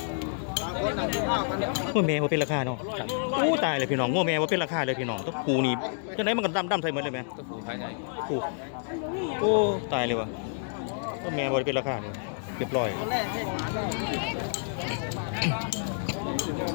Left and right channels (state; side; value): silent; right; digital silence